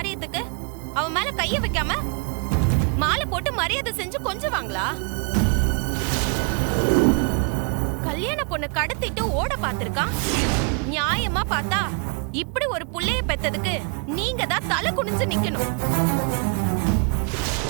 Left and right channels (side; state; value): left; quieter; 36.7 dB